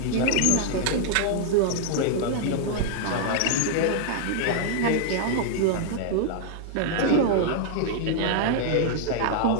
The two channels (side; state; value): both; different; correlation -0.01